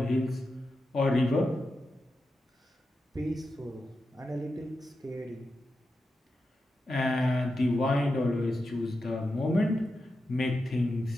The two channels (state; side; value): normal; both; correlation 0.89